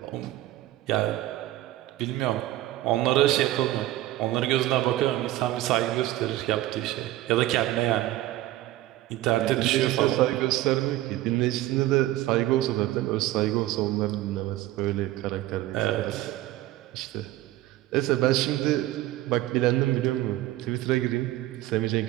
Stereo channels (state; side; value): quieter; left; 15.6 dB